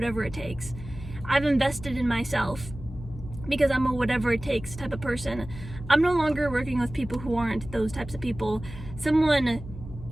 it takes. I've invested in myself because I'm a whatever it takes type of person. I'm no longer working with people who aren't those types of people. Someone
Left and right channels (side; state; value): left; noise; hum, 13 dB below the sound